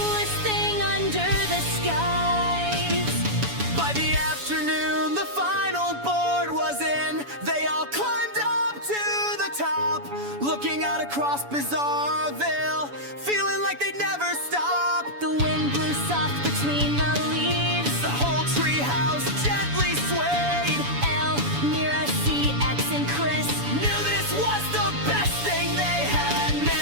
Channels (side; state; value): left; late; 7.0 ms